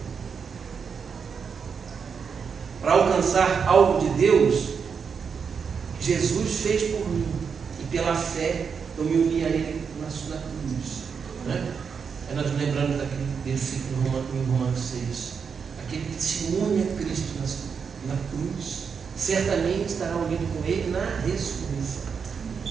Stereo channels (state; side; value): quieter; left; 6.2 dB